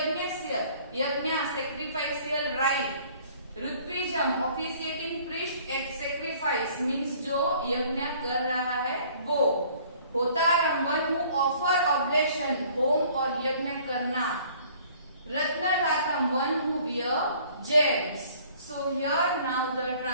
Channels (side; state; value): both; inverted; correlation -0.55